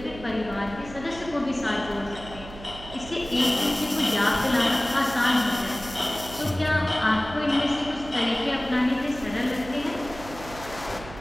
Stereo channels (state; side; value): noise; right; hum, 15 dB below the sound